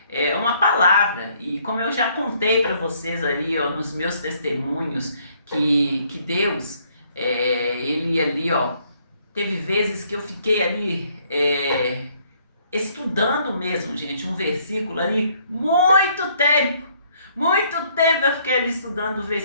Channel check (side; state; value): both; inverted; correlation -0.65